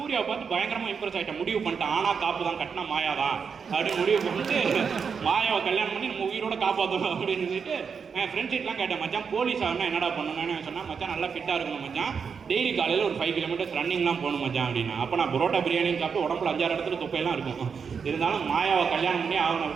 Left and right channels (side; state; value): left; quieter; 6.1 dB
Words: பார்த்து பயங்கரமாக இம்ப்ரெஸ் ஆகிட்டேன். முடிவு பண்ணிட்டேன், ஆனால் காப்பு தான், கட்டினா மாயா தான் அப்படின்னு முடிவு பண்ணிட்டு மாயாவை கல்யாணம் பண்ணி நம்ம உயிரோட காப்பாற்றணும் அப்படின்னு சொல்லிட்டு என் ஃப்ரெண்ட்ஸ் கிட்டலாம் கேட்டேன், மச்சான் போலீஸ் ஆகணும் என்னடா பண்ணணும்னு சொன்னால், மச்சான் நல்லா ஃபிட்டாக இருக்கணும் மச்சான், டெய்லி காலையில் ஒரு 5 கிலோமீட்டர்ஸ் ரன்னிங்லாம் போகணும் மச்சான் அப்படின்னா. அப்போ நான் பரோட்டா பிரியாணின்னு சாப்பிட்டு உடம்புல 5-6 இடத்துல தொப்பையெல்லாம் இருக்கும். இருந்தாலும் மாயாவை கல்யாணம் பண்ணி ஆகணும்